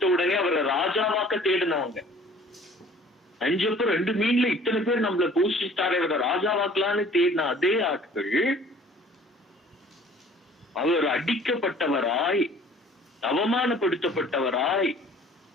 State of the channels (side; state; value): both; normal; correlation 0.51